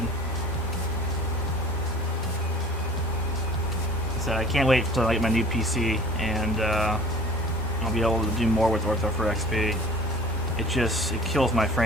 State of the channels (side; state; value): both; normal; correlation 0.46